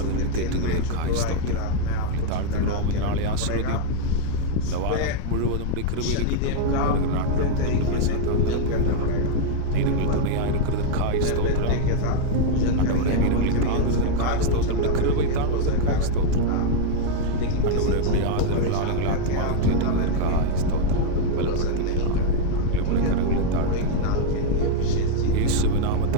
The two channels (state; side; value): different; both; correlation 0.00